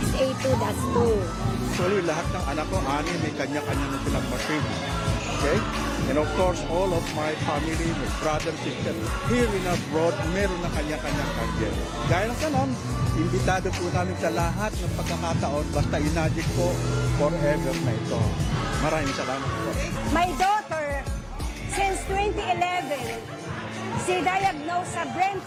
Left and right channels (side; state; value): both; identical; correlation 1.00